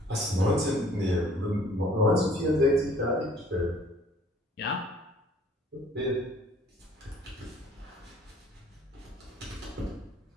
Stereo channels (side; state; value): both; normal; correlation 0.57